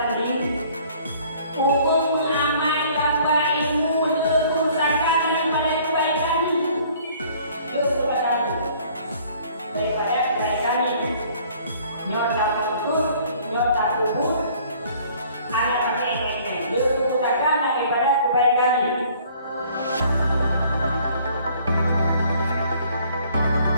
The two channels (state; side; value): inverted; both; correlation -0.56